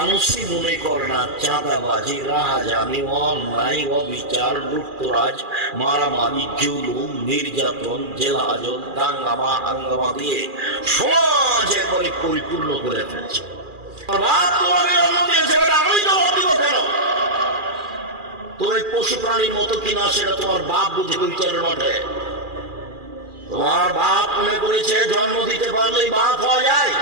মনে করে না। চাঁদাবাজি, রাহাজানি, অন্যায়, অবিচার, লুটতরাজ, মারামারি, জুলুম, নির্যাতন, জেলাজল, দাঙ্গামা হাঙ্গামা দিয়ে সমাজ একবারে পরিপূর্ণ করে ফেলছে। তুমি পশু প্রাণীর মতো কিনা সেটা তোমার বাপ বুঝে বিচারের মাঠে। তোমার বাপ মনে করেছে জন্ম দিতে পারলেই বাপ হওয়া যায়।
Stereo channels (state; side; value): late; left; 2.4 ms